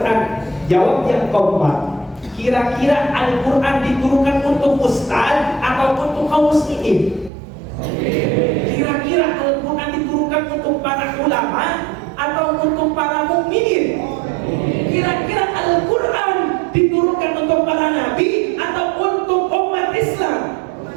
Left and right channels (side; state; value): left; drops out; at 7.3 s